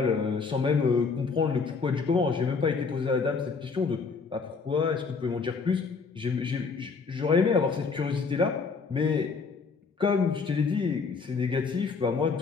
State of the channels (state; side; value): quieter; right; 4.9 dB